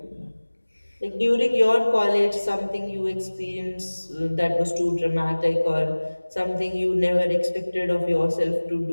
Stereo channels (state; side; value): inverted; both; correlation -1.00